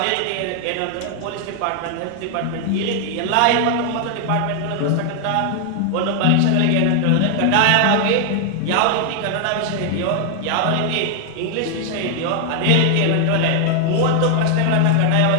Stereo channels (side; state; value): both; different; correlation 0.00